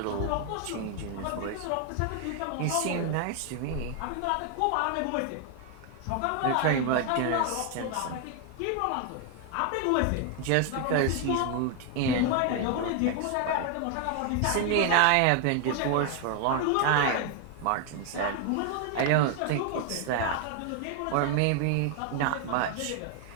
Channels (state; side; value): different; both; correlation 0.01